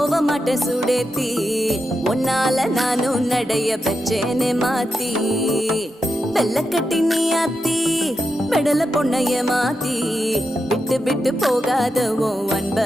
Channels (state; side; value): normal; both; correlation 0.87